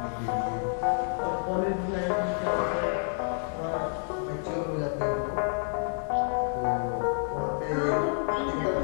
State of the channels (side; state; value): right; silent; 59 dB below the other